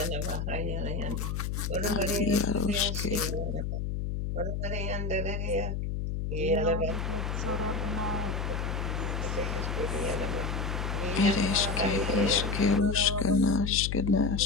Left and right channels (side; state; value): left; noise; hum, 2 dB below the sound